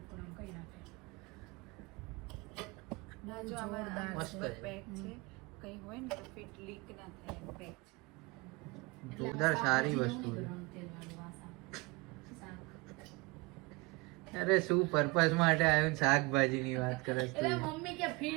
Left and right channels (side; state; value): left; quieter; 26.3 dB